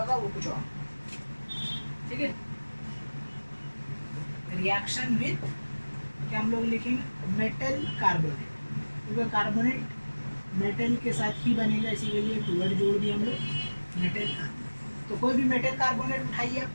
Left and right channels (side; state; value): both; inverted; correlation -1.00